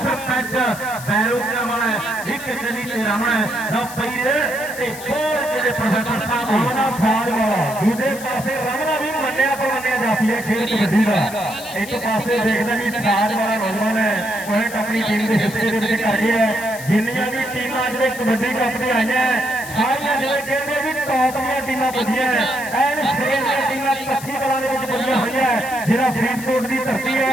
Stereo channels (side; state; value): left; noise; hiss, 13 dB below the sound